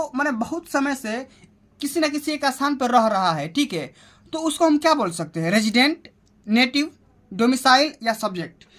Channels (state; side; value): identical; both; correlation 1.00